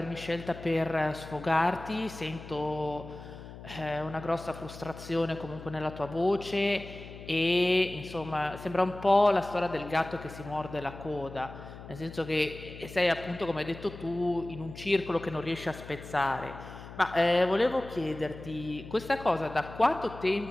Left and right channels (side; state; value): left; noise; hum, 14 dB below the sound